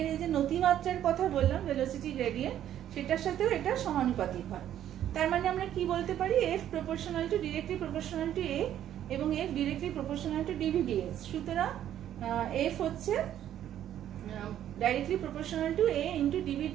এই যে নতিমাত্রার কথা বললাম, ভেলোসিটি গ্রেডিয়েন্ট, সেটার সাথেও এটা সমানুপাতিক হয়। তার মানে আমরা কি বলতে পারি, f proportional to directly proportional to a এবং f directly proportional to dv dx। সুতরাং f হচ্ছে directly proportional to a into dv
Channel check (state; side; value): quieter; left; 11.1 dB